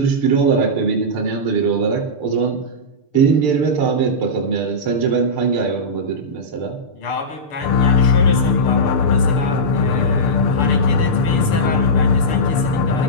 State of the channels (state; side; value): late; right; 6.8 ms